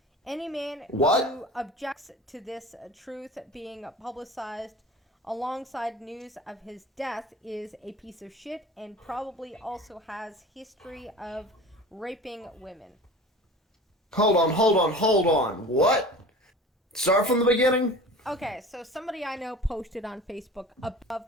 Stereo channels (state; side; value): normal; both; correlation 0.38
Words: Any man who objects to this truth being publicized alongside news of his death is a piece of shit and probably also has history of raping women. Hold on. What? Start from the beginning? Okay, so somebody I know posted on Facebook above